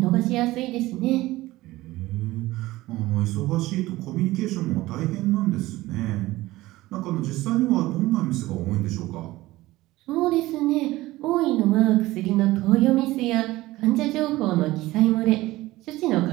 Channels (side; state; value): left; quieter; 18.0 dB